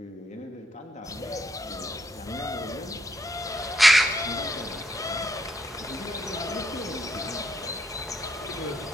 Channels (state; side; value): normal; both; correlation 0.75